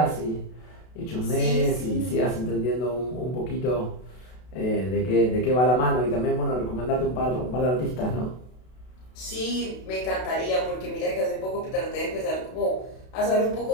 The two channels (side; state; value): right; late; 32 ms